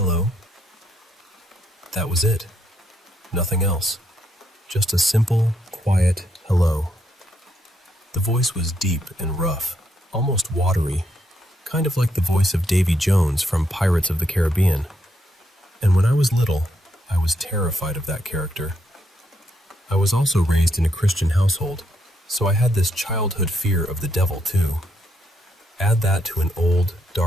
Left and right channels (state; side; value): normal; both; correlation 0.77